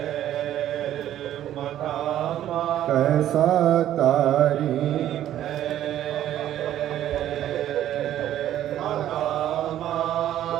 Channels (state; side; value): quieter; left; 12.0 dB